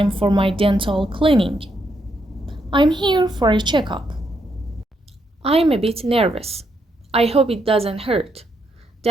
for my dental cleaning. I'm here for a checkup. I'm a bit nervous. I hope it doesn't hurt.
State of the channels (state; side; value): normal; both; correlation 0.78